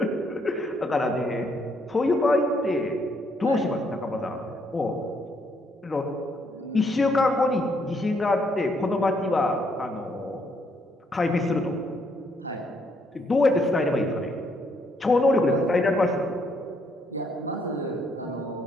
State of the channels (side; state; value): both; normal; correlation 0.72